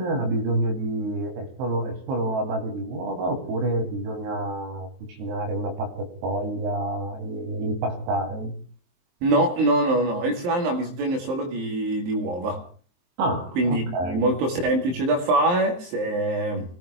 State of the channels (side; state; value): left; late; 23 ms